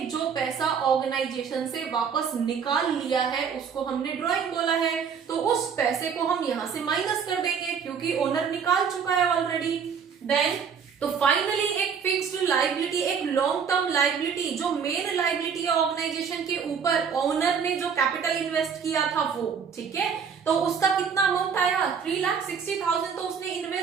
जो पैसा ऑर्गेनाइजेशन से वापस निकाल लिया है उसको हमने ड्रॉइंग बोला है, तो उस पैसे को हम यहां से माइनस कर देंगे क्योंकि ओनर निकाल चुका है ऑलरेडी। देन तो फाइनली एक फिक्स्ड लायबिलिटी, एक लॉन्ग टर्म लायबिलिटी, जो मेन लायबिलिटी है ऑर्गेनाइजेशन के ऊपर, ओनर ने जो कैपिटल इन्वेस्ट किया था वो, ठीक है, तो उसका कितना अमाउंट आया, 3,60,000 तो उसने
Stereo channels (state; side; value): quieter; left; 6.7 dB